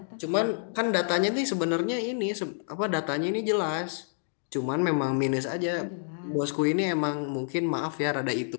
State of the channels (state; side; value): silent; right; digital silence